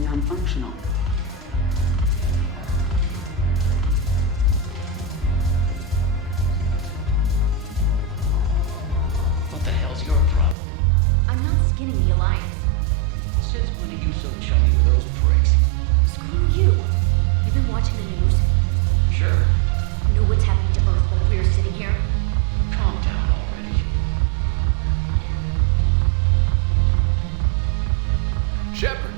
What the hell's your problem? I'm not skinning the Alliance. Since when are you so chummy with those pricks? Screw you. You've been watching the news? Sure. Know what's happening to Earth while we are sitting here? Calm down already. Shepard,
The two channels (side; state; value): left; drops out; at 10.6 s